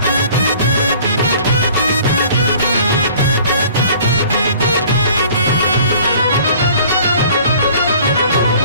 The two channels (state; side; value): inverted; both; correlation -0.51